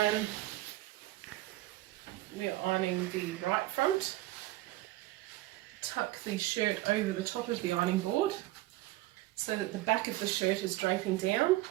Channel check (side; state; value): left; quieter; 17.4 dB